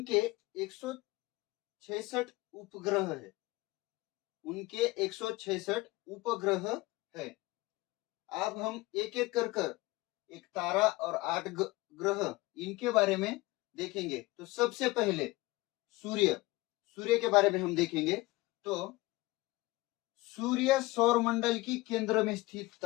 166 उपग्रह है। उनके 166 उपग्रह है। अब हम एक एक कर एक तारा और 8 ग्रह इनके बारे में देखेंगे। तो सबसे पहले सूर्य के बारे में हम देखेंगे। तो सूर्य सौर मंडल की केंद्र में स्थित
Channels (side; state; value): right; quieter; 20.8 dB